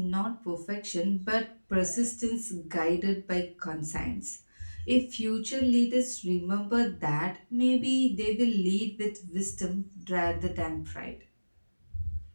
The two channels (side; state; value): both; inverted; correlation -1.00